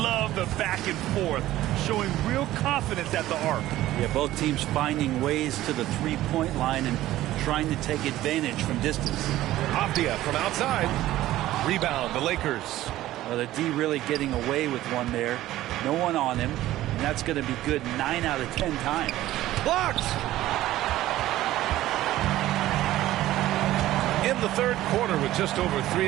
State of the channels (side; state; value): left; quieter; 15.0 dB